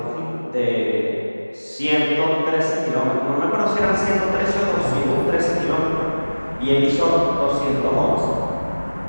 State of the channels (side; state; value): both; inverted; correlation -1.00